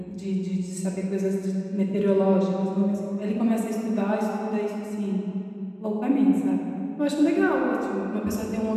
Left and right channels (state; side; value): identical; both; correlation 1.00